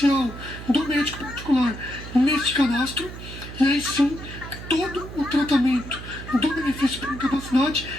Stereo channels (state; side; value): noise; right; hum, 12 dB below the sound